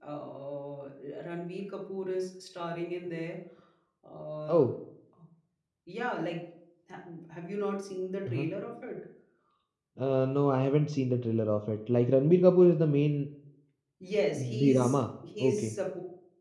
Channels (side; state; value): both; identical; correlation 1.00